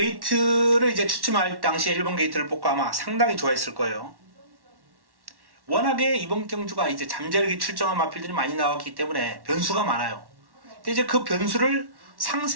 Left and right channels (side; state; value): left; late; 1.1 ms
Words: 이제 추첨할 당시에 1번 게이트를 뽑고 아마 상당히 좋아했을 거예요. 워낙에 이번 경주가 이제 잠재력이 출정한 마필들이 많이 나왔기 때문에 변수가 많아요. 근데 이제 그 변수를